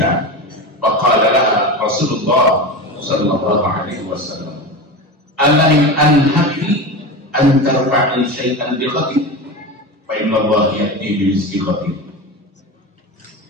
faqala laha Rasulullah sallallahu alaihi wasallam ala in anhaki an tarfa'i syai'an bi ghadin fa inna Allah ya'ti bi rizqi ghadin.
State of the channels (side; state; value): both; normal; correlation 0.25